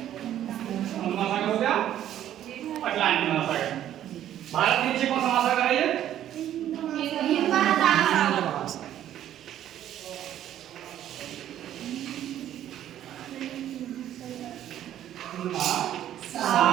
महासागर हो गया, अटलांटिक महासागर। भारत के नीचे कौन सा महासागर है ये?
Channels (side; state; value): left; quieter; 11.5 dB